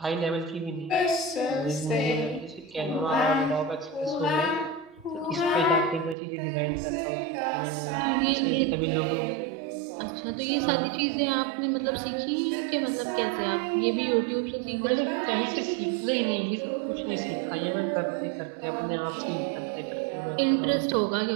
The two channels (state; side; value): drops out; left; at 6.2 s